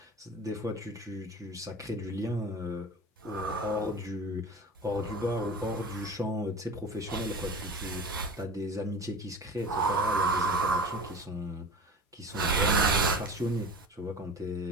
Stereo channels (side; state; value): both; normal; correlation 0.35